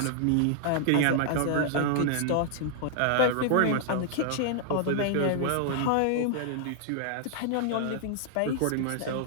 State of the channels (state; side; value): different; both; correlation -0.01